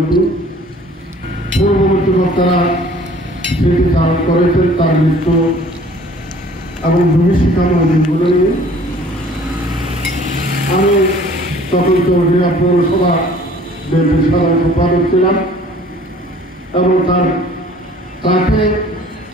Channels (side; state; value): both; normal; correlation 0.52